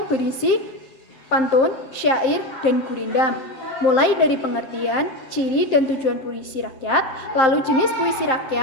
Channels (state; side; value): late; right; 7.6 ms